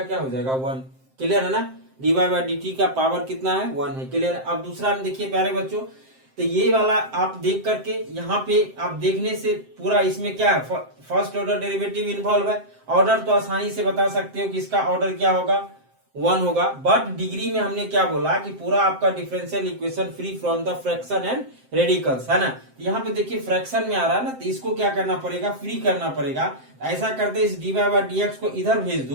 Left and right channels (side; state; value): left; late; 7.7 ms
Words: क्या हो जाएगा 1। क्लियर है ना। dy बाय dt का पावर कितना है, 1 है। क्लियर है। अब दूसरा में देखिए प्यारे बच्चों, तो ये वाला आप देख करके यहाँ पे आप देखने से पूरा इसमें क्या है, फर्स्ट ऑर्डर डेरिवेटिव इन्वॉल्व है। ऑर्डर तो आसानी से बता सकते हो कि इसका ऑर्डर क्या होगा, 1 होगा। बट डिग्री में हमने क्या बोला कि पूरा आपका differential equation free from the fraction and radicals, है ना। यहाँ पे देखिए फ्रैक्शन में आ रहा है ना, तो इसको क्या करना पड़ेगा, फ्री करना पड़ेगा। ऐसा करते इस dy बाय dx को इधर भेज